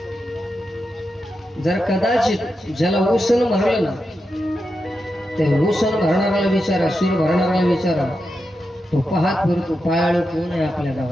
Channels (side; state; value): both; normal; correlation 0.88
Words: जर कदाचित ज्याला उसण भरलं ना, ते उसण भरणाऱ्याला विचारा, शिर भरणाऱ्याला विचारा, तो पाहत फिरतो पायाळू कोण आहे आपल्या